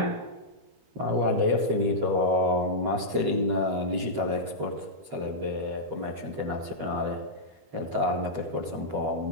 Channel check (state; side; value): late; left; 13 ms